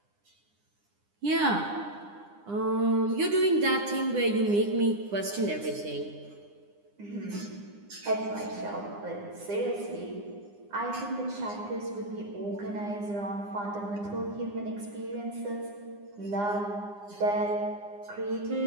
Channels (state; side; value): late; left; 9.8 ms